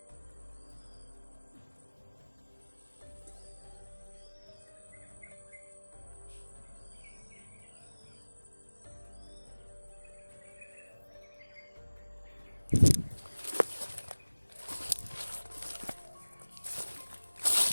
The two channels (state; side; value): inverted; both; correlation -1.00